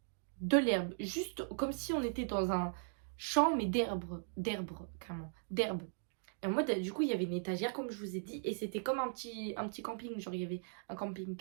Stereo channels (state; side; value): silent; left; digital silence